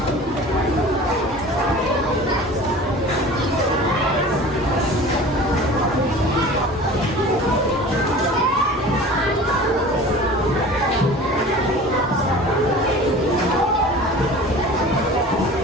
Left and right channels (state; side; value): normal; both; correlation 0.40